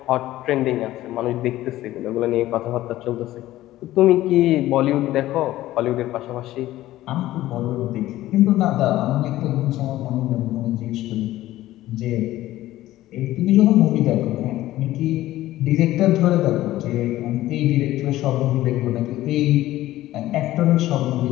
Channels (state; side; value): quieter; right; 15.3 dB